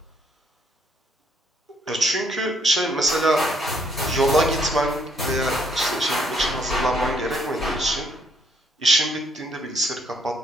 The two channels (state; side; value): normal; both; correlation 0.69